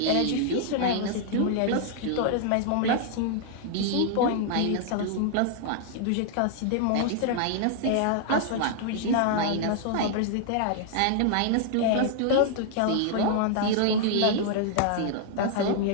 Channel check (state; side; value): different; both; correlation -0.01